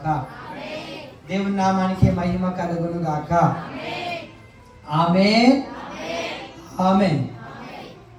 దేవుని నామానికి మహిమ కలుగును గాక. ఆమేన్ ఆమేన్.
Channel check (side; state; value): both; identical; correlation 1.00